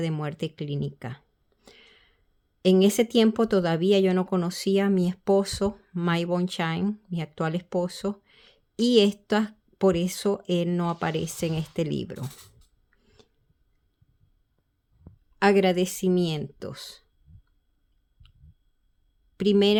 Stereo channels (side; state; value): both; identical; correlation 1.00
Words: de muerte clínica. En ese tiempo todavía yo no conocía a mi esposo, Mike Bonshine, mi actual esposo, y por eso él no aparece en este libro. Agradecimientos.